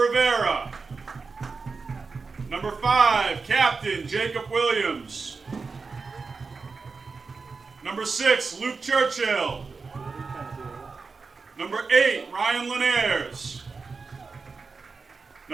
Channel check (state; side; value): quieter; left; 4.5 dB